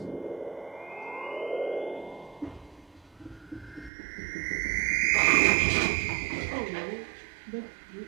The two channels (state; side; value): drops out; left; at 3.9 s